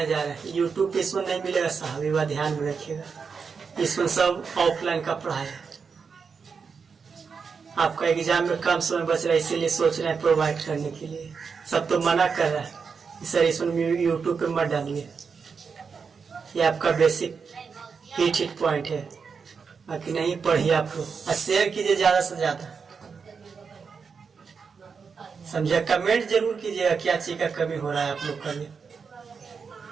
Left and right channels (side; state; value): left; quieter; 5.7 dB